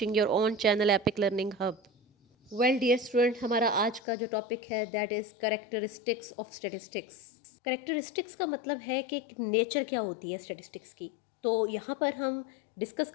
your own channel Epic Learning Hub. Well, dear student, हमारा आज का जो topic है that is characteristics of statistics. Characteristics का मतलब है कि nature क्या होती है स्टैटिस्टिक्स की. तो यहाँ पर हम डिस्कस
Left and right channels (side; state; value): right; drops out; at 4.0 s